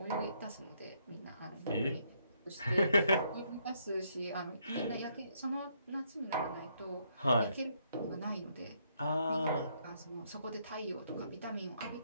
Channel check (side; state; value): both; inverted; correlation -0.73